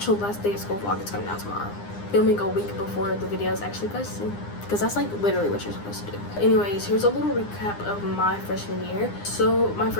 last day of school vlog is coming out tomorrow. Filming a week before the video is actually posted, because that's like literally what you're supposed to do. Anyways, here's a little recap of my freshman year. So my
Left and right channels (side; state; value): right; late; 9.8 ms